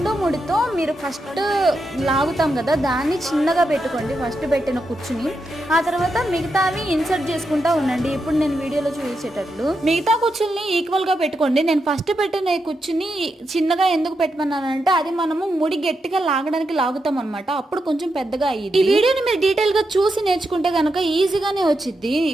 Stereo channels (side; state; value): both; normal; correlation 0.85